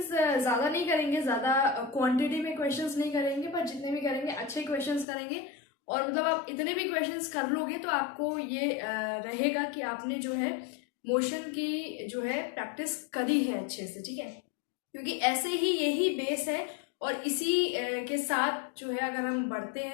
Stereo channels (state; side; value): drops out; right; at 5.1 s